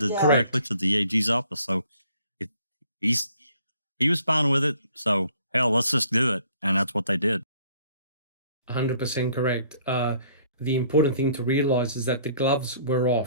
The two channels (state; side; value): inverted; both; correlation -0.59